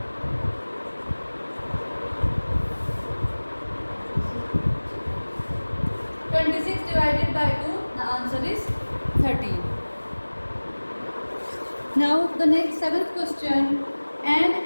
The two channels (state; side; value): inverted; both; correlation -1.00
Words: Divided by 2, the answer is 13. Now the next 7th question. An